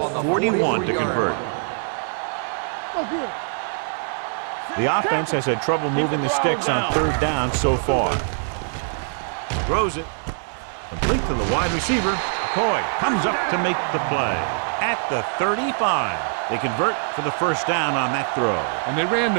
41 to convert. The offense has had trouble moving the sticks on third down so far. Throws it. Complete to the wide receiver. McCoy comes up to make the play at the 35. They convert for the first down on that throw. And they ran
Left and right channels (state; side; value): silent; left; digital silence